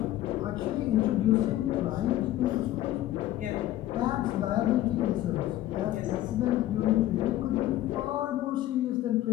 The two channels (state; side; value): quieter; right; 14.2 dB